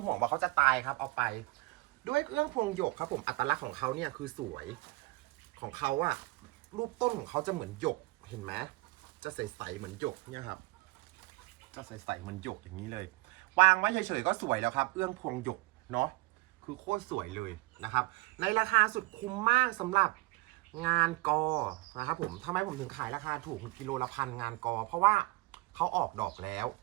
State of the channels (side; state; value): left; quieter; 21.8 dB